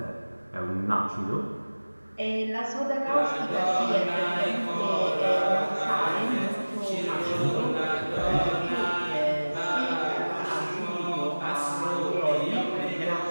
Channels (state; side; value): inverted; both; correlation -1.00